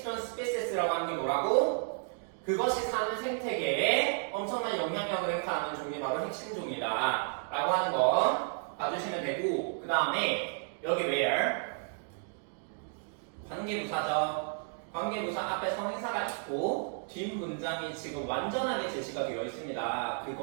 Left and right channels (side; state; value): left; silent; 56 dB below the other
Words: Species라고 하는 게 뭐라고? 그것이 사는 생태계에 엄청난 영향력을 행사하는 종이 바로 핵심 종이다 라고 하는 거 봐주시면 되고, 그 다음에 여기 where 관계부사죠. 관계부사 앞에 성인사가 있고 뒷 문장이 지금 완전하게 제시가 되어 있습니다.